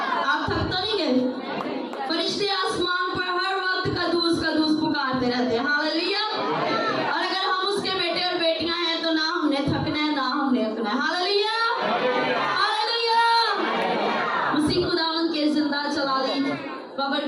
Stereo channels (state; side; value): identical; both; correlation 1.00